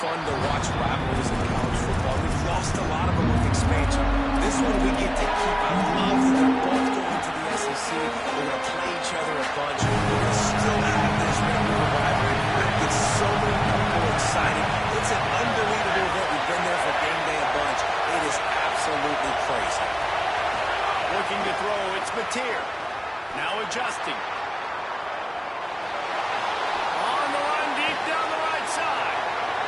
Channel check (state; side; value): identical; both; correlation 1.00